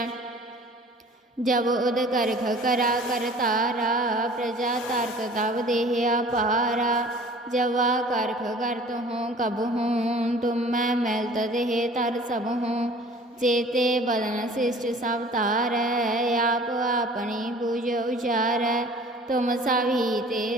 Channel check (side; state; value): both; normal; correlation 0.48